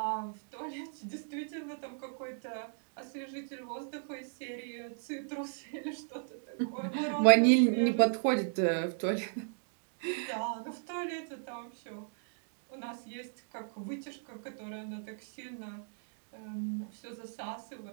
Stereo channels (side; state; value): left; silent; digital silence